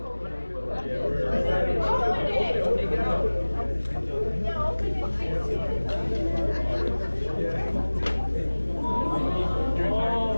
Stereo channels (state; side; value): inverted; both; correlation -1.00